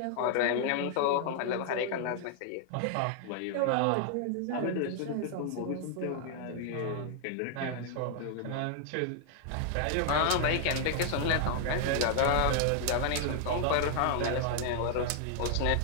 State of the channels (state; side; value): different; both; correlation 0.00